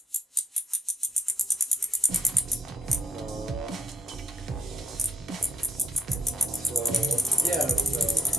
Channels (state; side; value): normal; both; correlation 0.74